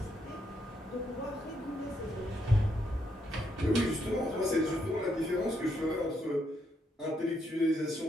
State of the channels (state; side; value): normal; both; correlation 0.77